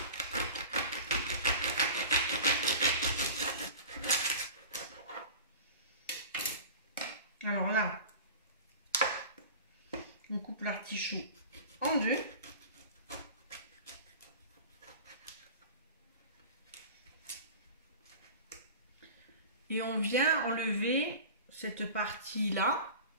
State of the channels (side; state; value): both; inverted; correlation -0.37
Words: Alors là, on coupe l'artichaut en deux. Et on vient enlever cette partie-là,